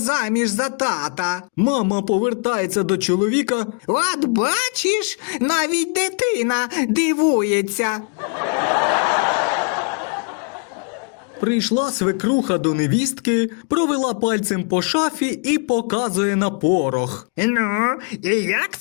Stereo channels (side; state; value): right; quieter; 38.3 dB